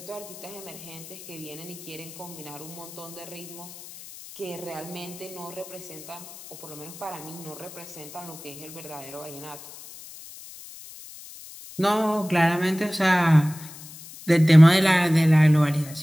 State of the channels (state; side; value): noise; left; hiss, 16 dB below the sound